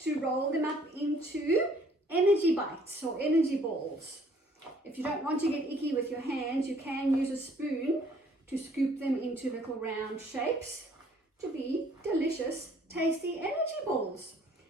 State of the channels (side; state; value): both; normal; correlation 0.60